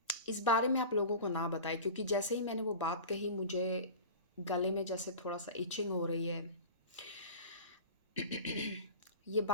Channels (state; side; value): inverted; both; correlation -0.34